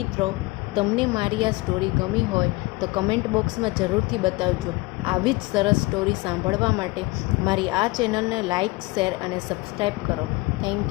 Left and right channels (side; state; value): right; quieter; 22.8 dB